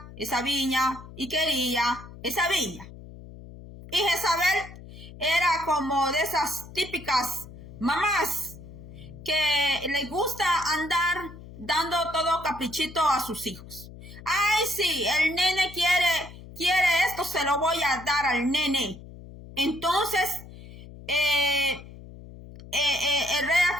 esa viña y quería esa viña. Y Jezabel era como de esas típicas mamás que les gusta andar dando todo caprichito a sus hijos. Ay, sí, el nene quiere esto, se lo voy a dar al nene. Entonces, el rey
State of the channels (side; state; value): left; noise; hum, 16 dB below the sound